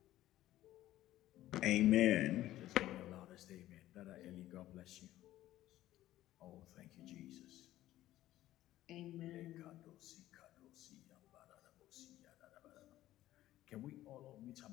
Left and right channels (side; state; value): right; quieter; 14.5 dB